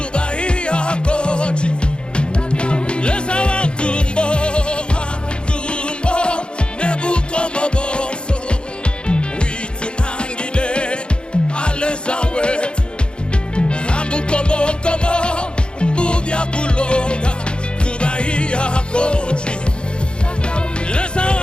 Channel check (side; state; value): right; late; 0.053 ms